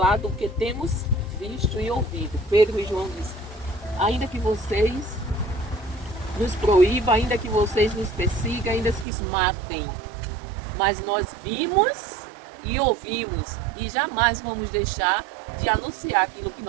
do que temos visto e ouvido. Pedro e João dizem: ainda que vocês nos proíbam, ainda que vocês nos persigam, ainda que nos matem, mas nós vimos e ouvimos e jamais vamos deixar de anunciar aquilo que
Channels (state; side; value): drops out; left; at 9.1 s